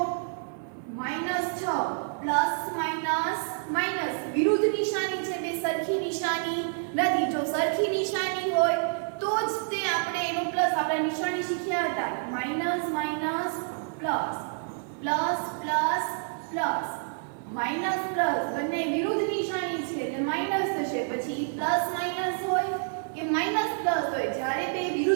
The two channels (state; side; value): silent; left; digital silence